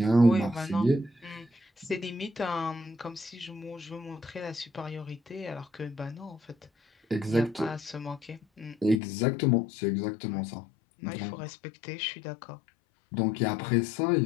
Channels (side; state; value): right; drops out; at 9.0 s